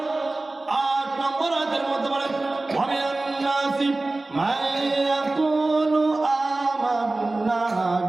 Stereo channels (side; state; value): left; quieter; 3.0 dB